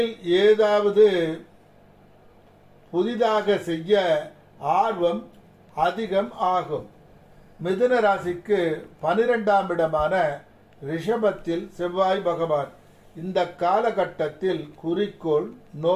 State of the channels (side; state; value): both; identical; correlation 1.00